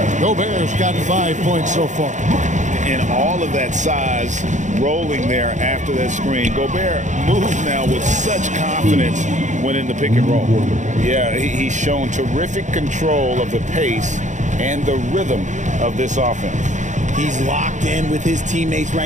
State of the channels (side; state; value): left; late; 0.35 ms